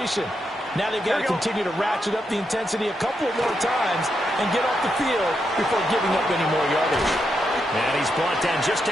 Now they've got to continue to ratchet up the intensity a couple of more times and get off the field before giving up any more yardage. And he's brought down just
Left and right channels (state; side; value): normal; both; correlation 0.82